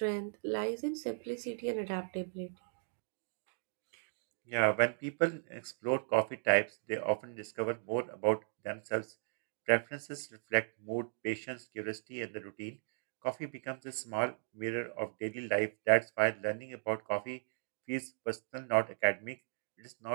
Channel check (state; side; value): silent; left; digital silence